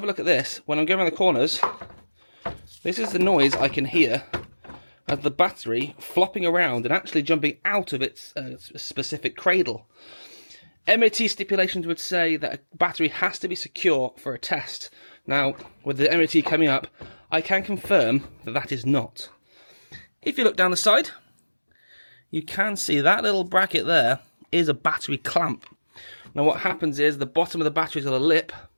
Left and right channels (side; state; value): both; inverted; correlation -1.00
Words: a look at this, when I'm going around the corners, this is the noise I can hear of the battery flopping around and actually jumping out of its specific cradle. MOT stipulations would say that a battery has to be secure for a test. Now, with the MOT coming up, I can confirm that that is not. If you look down the side, you can see that little bracket there is a battery clamp. Now what happens is the bottom of the battery's got a lip,